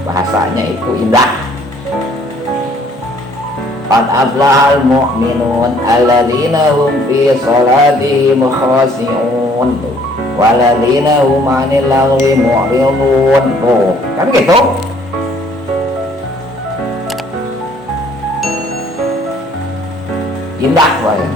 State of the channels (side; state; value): both; normal; correlation 0.60